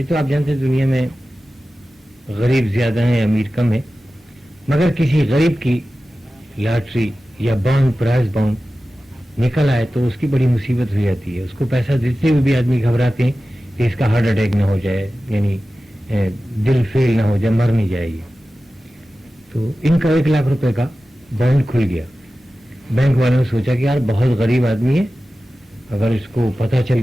तो आप जानते हैं दुनिया में गरीब ज्यादा है, अमीर कम है, मगर किसी गरीब की लॉटरी या बॉन्ड, प्राइज बॉन्ड निकल आए तो उसकी बड़ी मुसीबत हो जाती है। उसको पैसा देते हुए भी आदमी घबराते हैं कि इसका हार्ट अटैक ना हो जाए, यानी दिल फेल ना हो जाए, मर नहीं जाएगी। तो इनका 1 लाख रुपए का बॉन्ड खुल गया। बैंक वालों ने सोचा कि यार बहुत गरीब आदमी है, अगर इसको पता चल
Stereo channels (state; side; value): normal; both; correlation 0.95